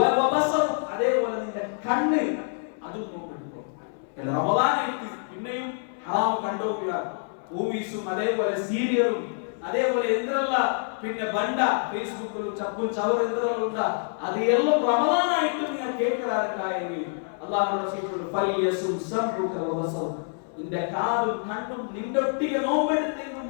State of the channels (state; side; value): silent; right; 60 dB below the other